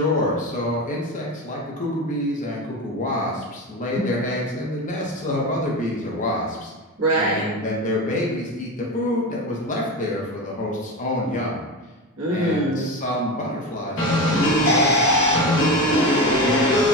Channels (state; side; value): normal; both; correlation 0.23